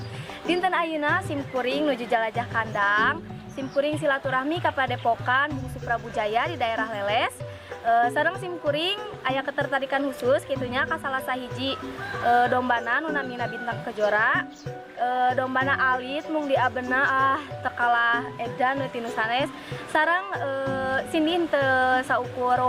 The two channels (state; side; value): identical; both; correlation 1.00